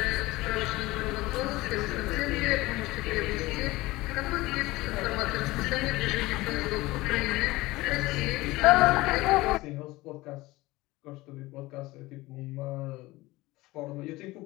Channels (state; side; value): quieter; right; 19.8 dB